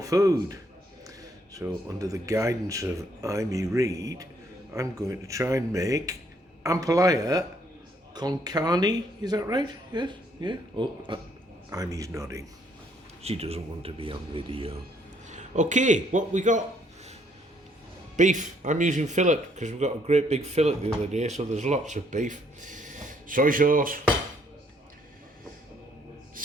So under the guidance of Amy Reed, I'm going to try and make Ampalaya Con Carne. Is that right? Yes? Yeah? Oh, Amy's nodding. She doesn't want to be on video. Okay, what we got? Beef. I'm using fillet because we've got a great big fillet the other day, so there's lots of beef. Soy sauce,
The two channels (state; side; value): normal; both; correlation 0.68